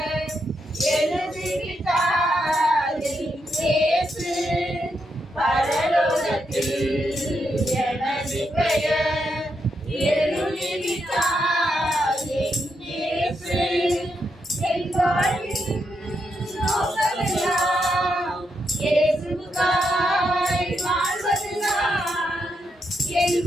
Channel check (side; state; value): both; normal; correlation 0.82